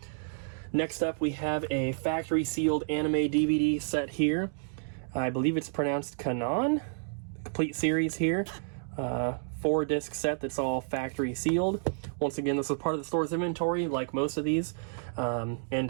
Next up, we have a factory sealed anime DVD set here. I believe it's pronounced Kanon. Complete series here. 4-disc set that's all factory sealed. Once again, this was part of the store's inventory, like most of these, and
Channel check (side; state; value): left; silent; digital silence